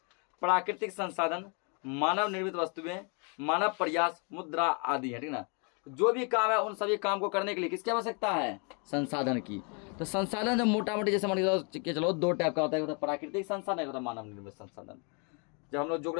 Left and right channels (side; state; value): right; quieter; 35.7 dB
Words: प्राकृतिक संसाधन, मानव निर्मित वस्तुएं, मानव प्रयास, मुद्रा आदि है, ठीक ना। जो भी काम है उन सभी काम को करने के लिए किसकी आवश्यकता है? संसाधन की। तो संसाधन जो मोटा मोटी जैसे मान के चलो दो टाइप का होता है, प्राकृतिक संसाधन होता है मानव निर्मित संसाधन। जब हम लोग